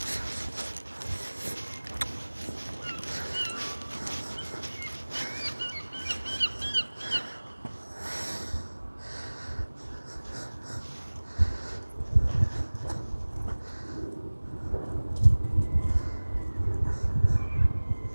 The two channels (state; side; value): inverted; both; correlation -1.00